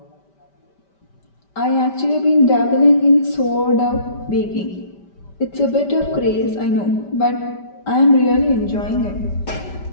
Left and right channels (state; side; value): late; right; 5.1 ms